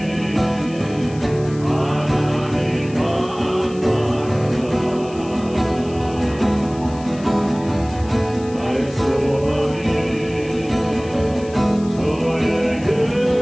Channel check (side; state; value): left; noise; hiss, 21 dB below the sound